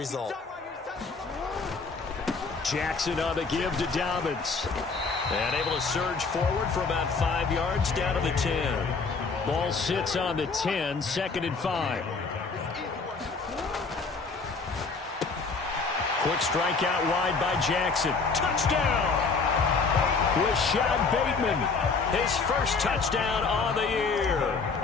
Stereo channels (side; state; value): right; quieter; 4.5 dB